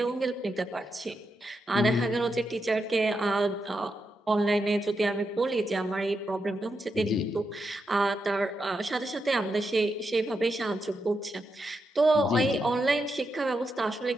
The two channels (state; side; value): normal; both; correlation 0.85